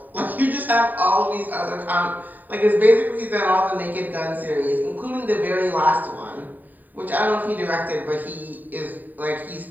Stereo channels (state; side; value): late; left; 0.086 ms